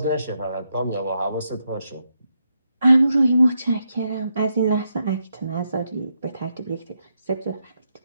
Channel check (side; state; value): both; inverted; correlation -0.82